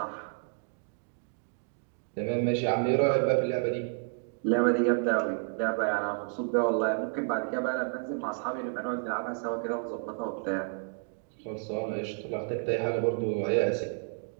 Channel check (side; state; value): left; silent; 57 dB below the other